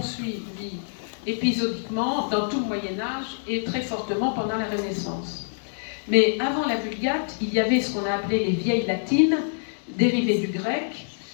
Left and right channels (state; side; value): silent; right; digital silence